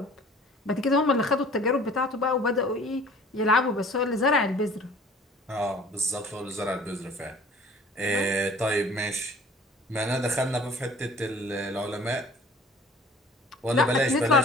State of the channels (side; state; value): both; normal; correlation 0.49